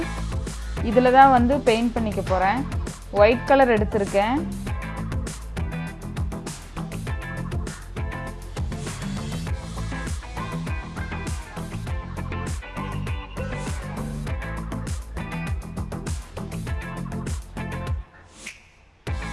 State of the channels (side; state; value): both; identical; correlation 1.00